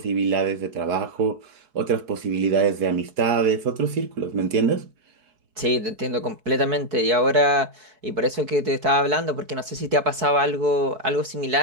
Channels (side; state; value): left; late; 4.6 ms